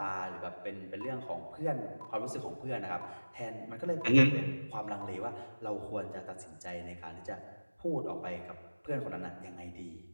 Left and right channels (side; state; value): both; inverted; correlation -1.00